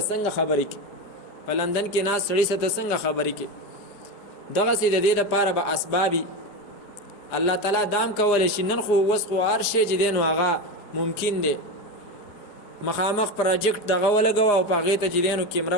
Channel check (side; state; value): right; late; 4.8 ms